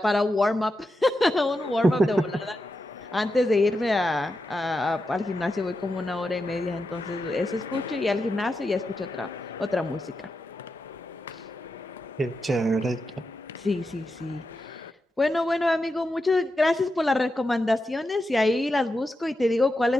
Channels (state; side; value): normal; both; correlation 0.88